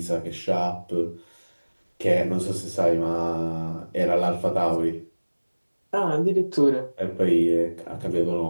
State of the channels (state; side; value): inverted; both; correlation -1.00